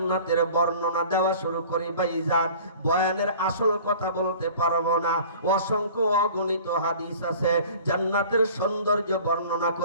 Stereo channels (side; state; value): both; inverted; correlation -0.45